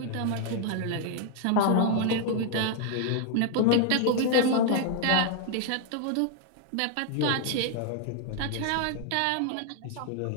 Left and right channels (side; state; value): both; different; correlation 0.00